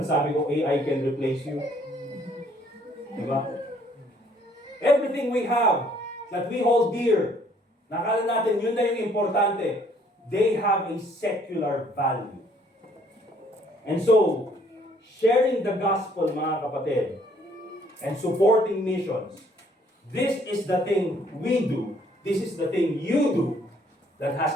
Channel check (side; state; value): both; normal; correlation 0.62